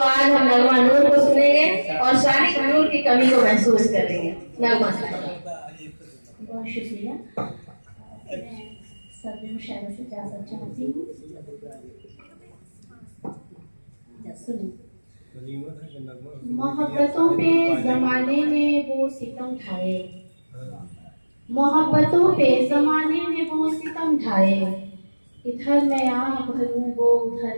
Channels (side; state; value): both; inverted; correlation -1.00